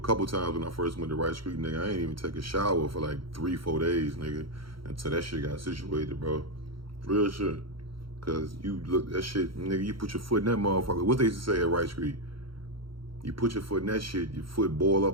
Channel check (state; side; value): late; left; 0.74 ms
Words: times when I first went to Rice Creek, nigga, I ain't even take a shower for like 3-4 days, nigga, until that shit got situated, bro. Real shit. Cause you look, that shit, nigga, you put your foot in that motherfucker. What they used to say at Rice Creek? You put your foot in that shit, your foot boil